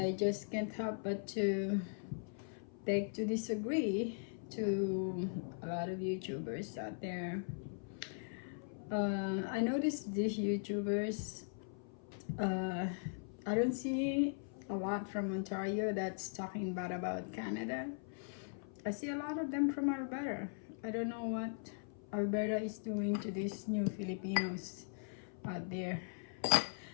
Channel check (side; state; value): right; silent; 51 dB below the other